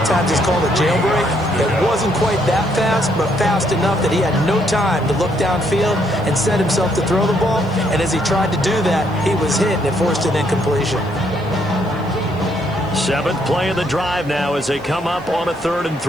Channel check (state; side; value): noise; right; hiss, 30 dB below the sound